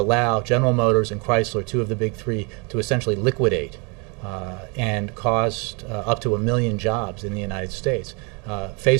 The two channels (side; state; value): left; quieter; 31.7 dB